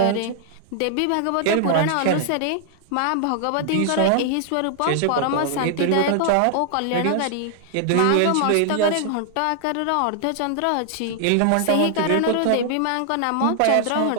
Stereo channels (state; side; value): different; both; correlation 0.00